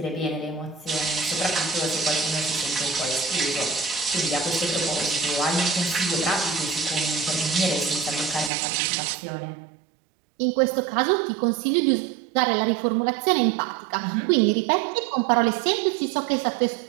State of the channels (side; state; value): left; drops out; at 8.5 s